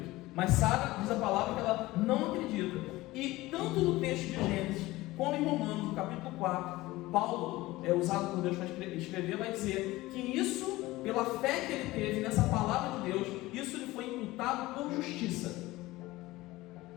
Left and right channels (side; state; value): right; quieter; 18.8 dB